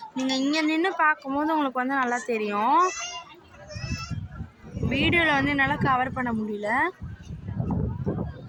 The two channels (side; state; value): both; identical; correlation 1.00